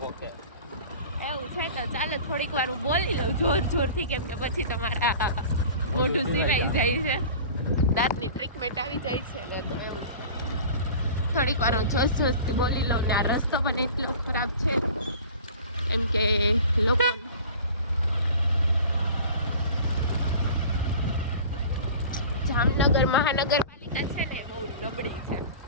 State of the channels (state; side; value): inverted; both; correlation -0.41